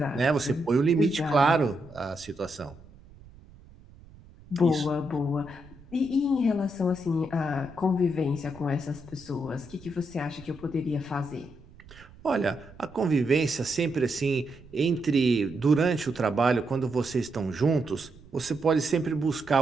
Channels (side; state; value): right; noise; rumble, 22 dB below the sound